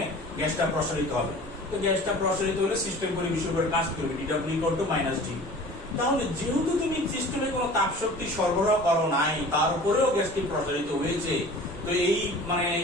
গ্যাসটা প্রসারিত হবে, তো গ্যাসটা প্রসারিত হলে সিস্টেম পরিবেশের উপর কাজ করবে DW equal to minus D. তাহলে যেহেতু তুমি সিস্টেমে কোনো তাপশক্তি সরবরাহ করো নাই, তার উপরেও গ্যাসটি প্রসারিত হয়েছে, তো এই মানে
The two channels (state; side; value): normal; both; correlation 0.42